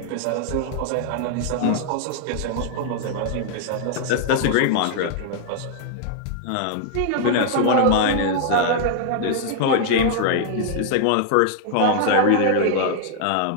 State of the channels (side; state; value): both; different; correlation 0.00